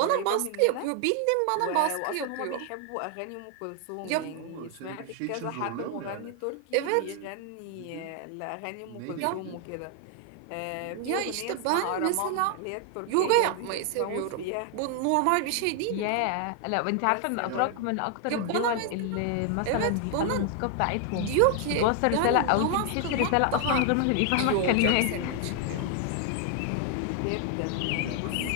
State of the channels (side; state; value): both; different; correlation 0.00